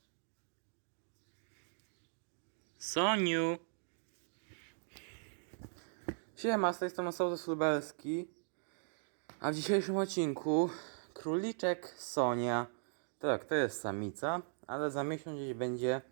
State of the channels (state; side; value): silent; left; digital silence